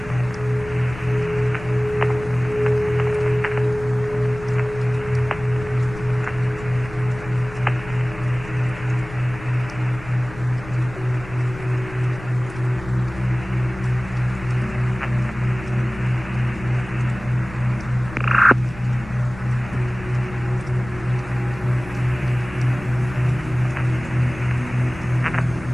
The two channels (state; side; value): noise; left; rumble, 15 dB below the sound